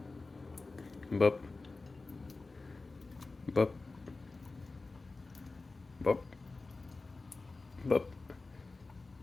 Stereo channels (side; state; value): right; quieter; 3.6 dB